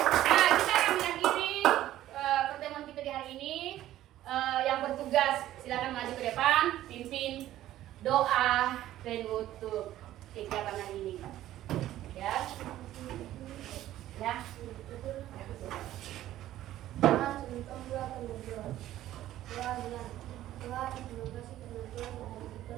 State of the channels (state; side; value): quieter; left; 13.7 dB